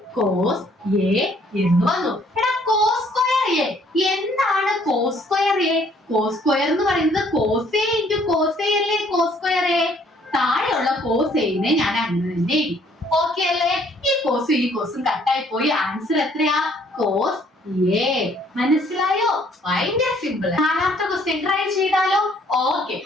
കോസ് എ എന്ന് വന്നു. എടാ, കോസ് സ്ക്വയർ എ എന്താണ്? Cos square A, cos square എന്ന് പറയുന്നത് cos A into cos A അല്ലേ. കോസ് സ്ക്വയർ എ താഴെയുള്ള കോസ് എനെ ഞാൻ അങ്ങനെ തന്നെ എഴുതി. ഓക്കെ അല്ലേ? ഈ കോസും കട്ടായി പോയി. ആൻസർ എത്രയാ? Cos A. മനസ്സിലായോ? ഭയങ്കര സിമ്പിൾ. നാലാമത്തെ ക്വസ്റ്റ്യൻ ട്രൈ ചെയ്താലോ? Okay,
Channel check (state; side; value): normal; both; correlation 0.62